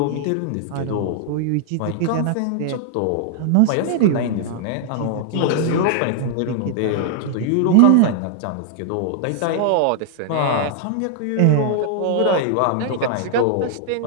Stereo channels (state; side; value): different; both; correlation -0.01